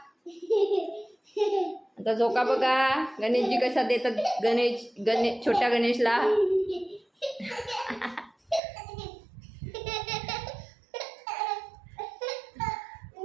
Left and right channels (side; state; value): left; drops out; at 8.6 s